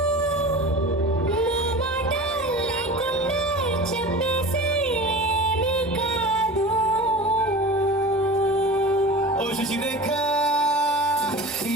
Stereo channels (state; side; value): normal; both; correlation 0.34